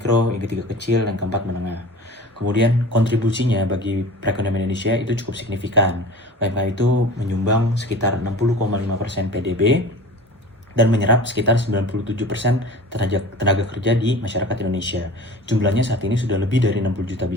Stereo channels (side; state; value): both; normal; correlation 0.39